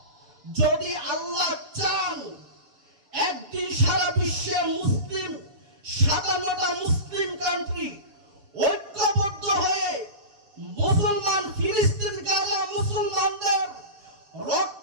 যদি আল্লাহ চান, একদিন সারা বিশ্বের মুসলিম 57টা মুসলিম কান্ট্রি ঐক্যবদ্ধ হয়ে মুসলমান ফিলিস্তিন গাজা মুসলমানদের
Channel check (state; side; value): late; left; 7.3 ms